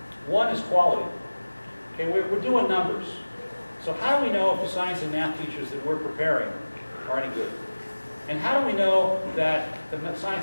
One is quality. Okay, we're doing numbers. So how do we know if the science and math teachers that we're preparing are any good? And how do we know that the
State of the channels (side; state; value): both; inverted; correlation -1.00